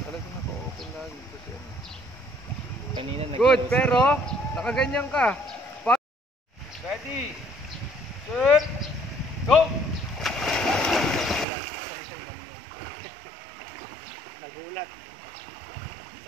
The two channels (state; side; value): drops out; left; at 11.5 s